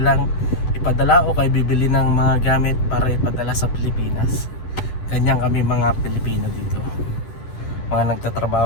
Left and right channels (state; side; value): late; right; 10 ms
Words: ipadala o kay bibili ng mga gamit para ipadala sa Pilipinas. Ganyan kami mga Pilipino dito, mga